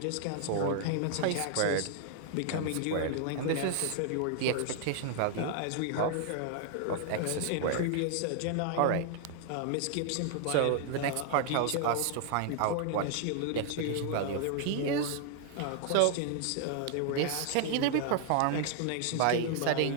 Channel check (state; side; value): different; both; correlation 0.00